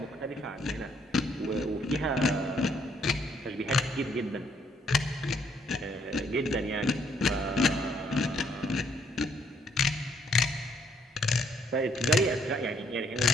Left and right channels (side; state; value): both; normal; correlation 0.69